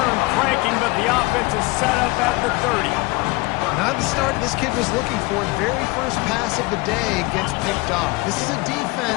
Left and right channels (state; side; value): quieter; right; 24.0 dB